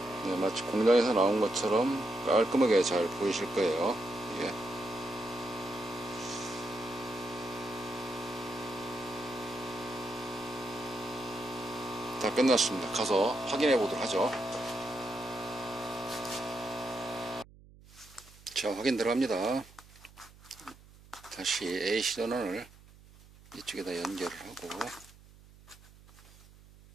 마치 공장에서 나온 것처럼 깔끔하게 잘 보이실 거예요. 이게 다 끝났습니다. 가서 확인해 보도록 하죠. 자, 확인 들어갑니다. 다시 AC 전원을 이쪽에다 연결을 하고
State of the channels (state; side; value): noise; right; hum, 23 dB below the sound